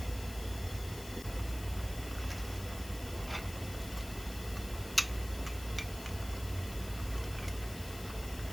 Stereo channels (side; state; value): left; noise; hiss, 12 dB below the sound